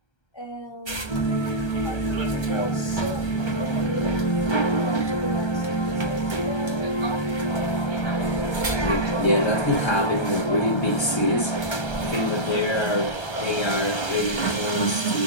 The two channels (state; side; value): late; right; 1.3 ms